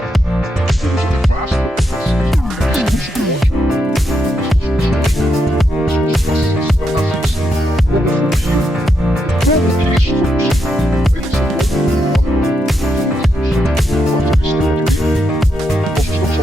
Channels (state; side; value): normal; both; correlation 0.82